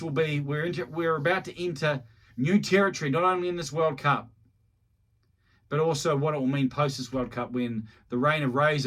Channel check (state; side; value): identical; both; correlation 1.00